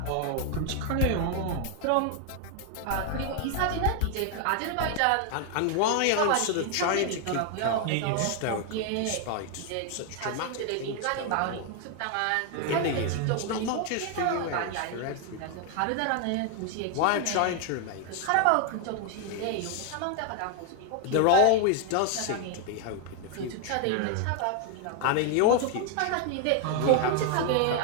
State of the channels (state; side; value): different; both; correlation 0.00